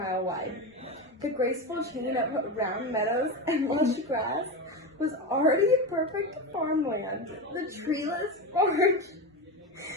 wide. The graceful chain of round meadows and lush grass was already perfect farmland. The treeless forge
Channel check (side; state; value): both; normal; correlation 0.19